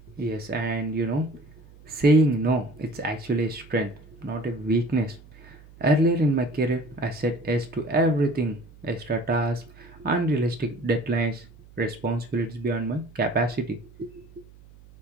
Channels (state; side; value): noise; right; hum, 23 dB below the sound